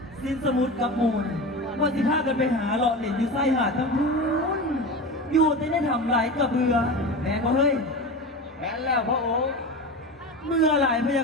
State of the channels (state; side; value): normal; both; correlation 0.27